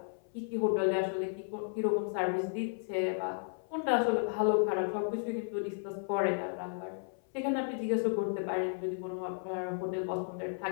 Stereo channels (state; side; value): silent; right; 55 dB below the other